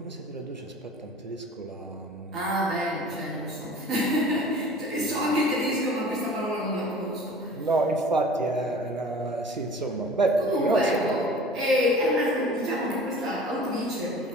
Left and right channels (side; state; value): both; normal; correlation 0.44